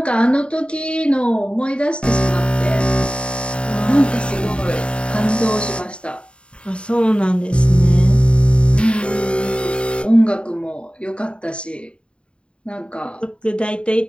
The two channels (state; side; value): late; right; 0.055 ms